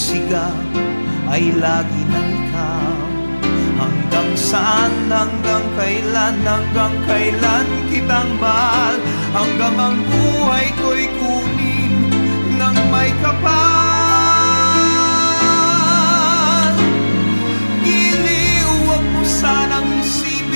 ay lagi ng ikaw. Hanggang saan, hanggang kailan kitang mahal, hanggang ang buhay ko'y kunin ng may kapal. Giliw, huwag mo sanang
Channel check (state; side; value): inverted; both; correlation -1.00